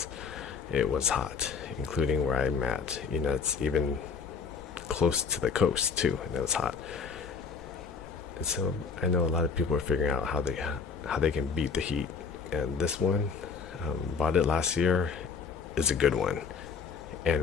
It was hot, including where I'm at. You know, it's even close to the coast too, and it was hot. And so I know a lot of people are figuring out how they can beat the heat. And this one, bought it last year, is a good one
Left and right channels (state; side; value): quieter; right; 5.6 dB